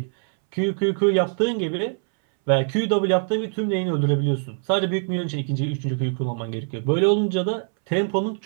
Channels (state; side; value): silent; left; 63 dB below the other